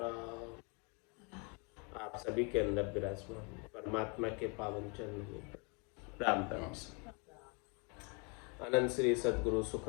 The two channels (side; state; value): right; quieter; 33.4 dB